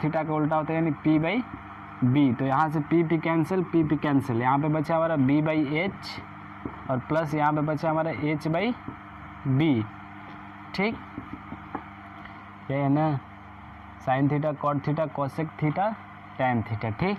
थीटा का उल्टा होता है यानी p/b। तो यहाँ से p कैंसिल, यहाँ पे बचा हमारा b/h और प्लस यहाँ पे बचा हमारा h/b। ठीक, ये है ना sine theta cot theta cosec theta tan theta. ठीक,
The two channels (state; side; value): identical; both; correlation 1.00